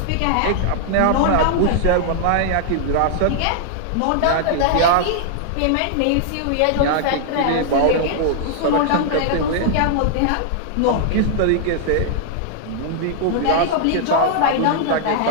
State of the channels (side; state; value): both; different; correlation -0.01